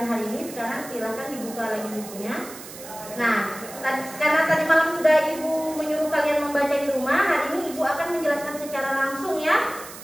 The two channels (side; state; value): right; noise; hiss, 14 dB below the sound